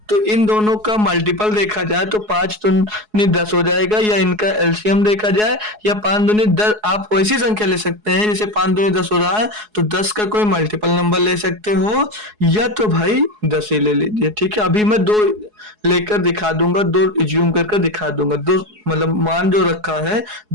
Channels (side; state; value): left; late; 4.7 ms